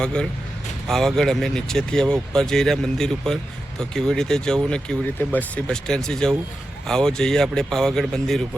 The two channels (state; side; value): normal; both; correlation 0.90